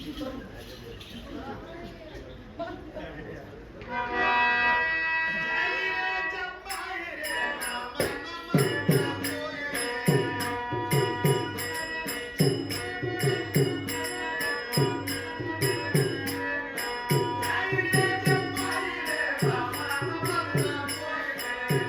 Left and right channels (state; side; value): identical; both; correlation 1.00